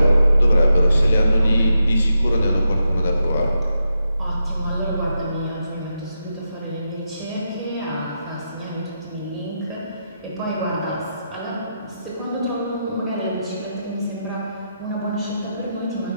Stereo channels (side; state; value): both; inverted; correlation -0.85